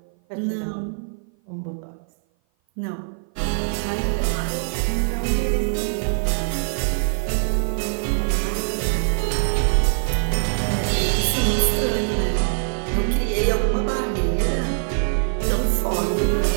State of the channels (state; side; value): silent; left; 56 dB below the other